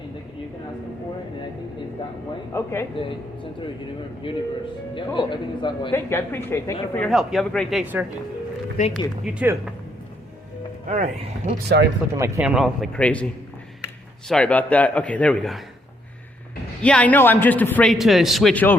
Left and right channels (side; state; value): both; normal; correlation 0.73